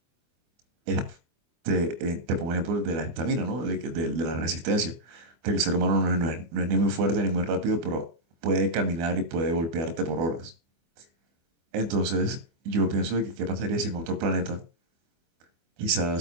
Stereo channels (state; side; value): late; left; 24 ms